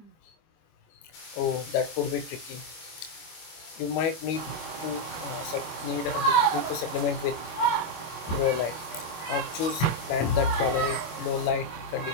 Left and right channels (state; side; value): late; right; 25 ms